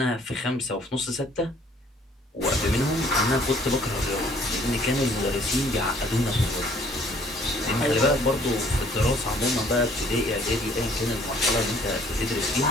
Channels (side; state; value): both; normal; correlation 0.59